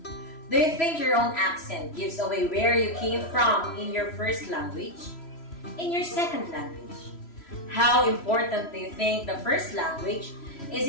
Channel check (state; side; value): late; right; 3.0 ms